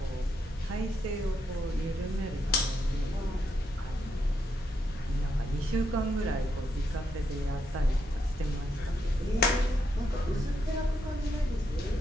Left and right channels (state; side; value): normal; both; correlation 0.80